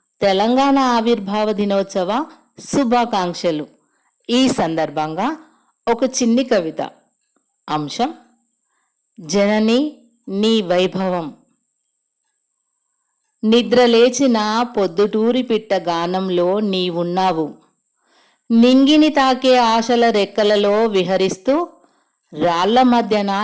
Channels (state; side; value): identical; both; correlation 1.00